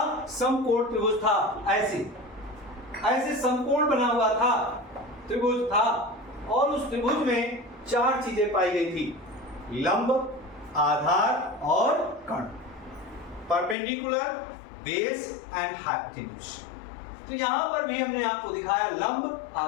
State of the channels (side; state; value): right; drops out; at 13.8 s